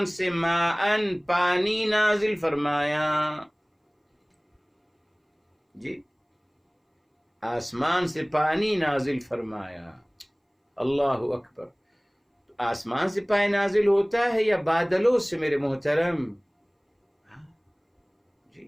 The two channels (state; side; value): identical; both; correlation 1.00